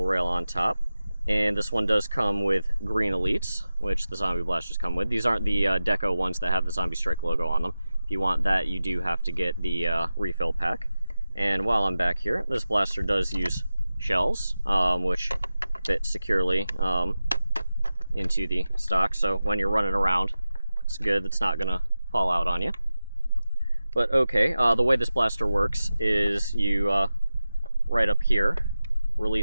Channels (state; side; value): inverted; both; correlation -0.94